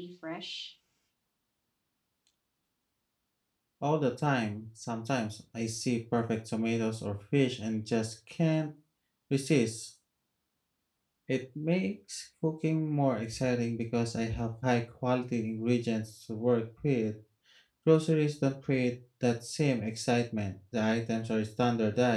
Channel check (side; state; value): both; identical; correlation 1.00